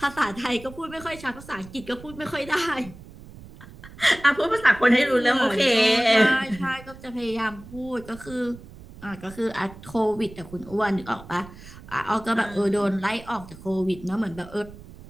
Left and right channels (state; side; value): noise; right; rumble, 18 dB below the sound